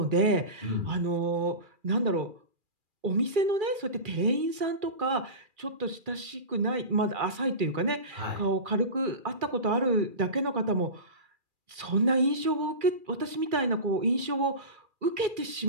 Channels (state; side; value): late; left; 2.4 ms